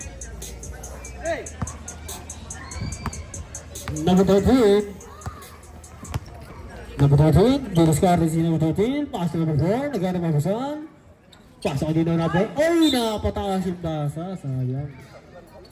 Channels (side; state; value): both; identical; correlation 1.00